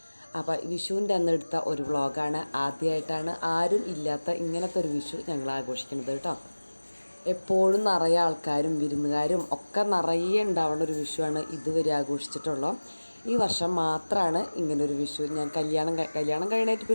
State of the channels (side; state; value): both; inverted; correlation -1.00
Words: അപ്പോൾ വിഷുവിൻ്റെ അന്ന് എടുത്ത ഒരു വ്ളോഗാണ്. ആദ്യമായിട്ടാണ് ആരും ഇല്ലാത്ത ഇങ്ങനത്തെ ഒരു വിഷു ഞങ്ങൾ ആഘോഷിക്കുന്നത് കേട്ടോ. എപ്പോഴും നിറയെ ആൾക്കാരും വിരുന്നുകാരും ഒക്കെ നിറയെ ഉണ്ടാവുന്ന ഒരു വിഷുവാണ് ഇതുവരെ ആഘോഷിച്ചിട്ടുള്ളത്. ഈ വർഷം മാത്രമാണ് ഇങ്ങനൊരു വിഷു. ഞാൻ കല്യാണം കഴിഞ്ഞിട്ട്